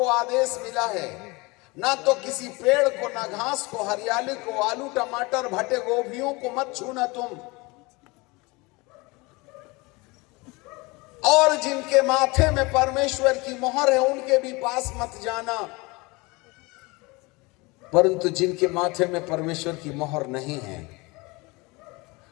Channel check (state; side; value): quieter; right; 25.1 dB